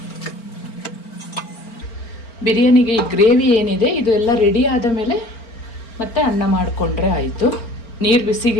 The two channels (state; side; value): late; right; 4.4 ms